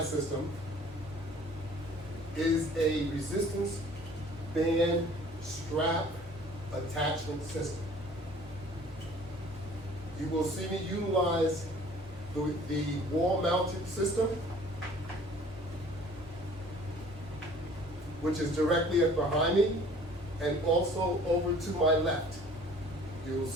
system is a resistance band strap attachment system. You will see me utilize the wall-mounted system, which is directly behind me, and also over to my left. You will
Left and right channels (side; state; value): both; normal; correlation 0.52